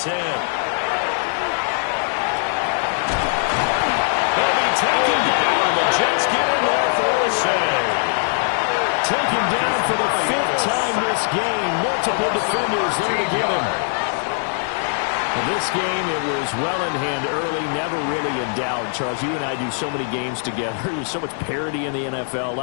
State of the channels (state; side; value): silent; right; digital silence